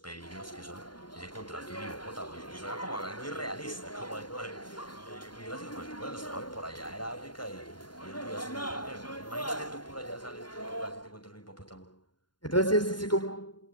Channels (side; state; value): right; late; 0.71 ms